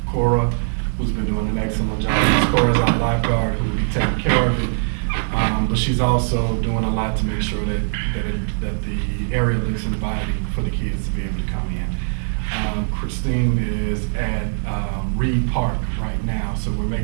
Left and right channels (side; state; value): left; silent; digital silence